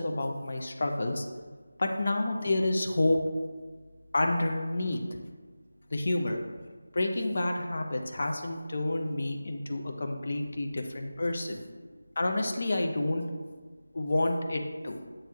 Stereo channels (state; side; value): inverted; both; correlation -0.96